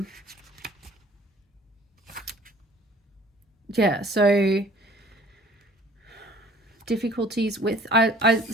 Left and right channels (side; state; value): both; normal; correlation 0.52